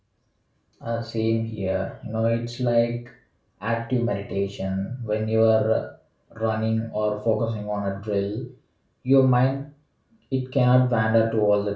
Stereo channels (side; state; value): both; identical; correlation 1.00